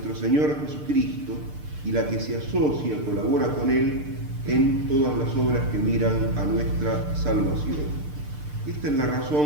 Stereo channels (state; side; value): late; left; 6.7 ms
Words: Señor Jesucristo, y la que se asocia, colabora con Él en todas las obras que miran a nuestra salvación. Esta es la